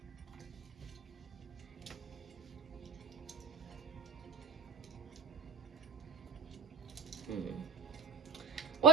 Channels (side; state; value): left; quieter; 5.1 dB